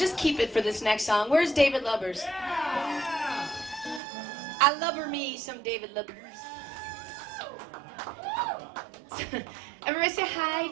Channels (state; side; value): drops out; left; at 4.0 s